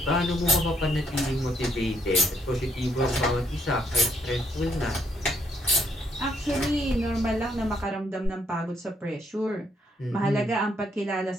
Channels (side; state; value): both; normal; correlation 0.73